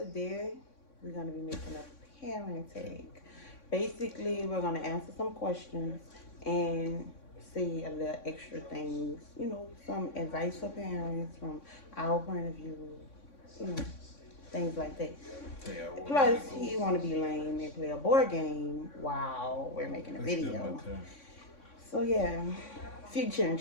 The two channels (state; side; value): late; right; 3.6 ms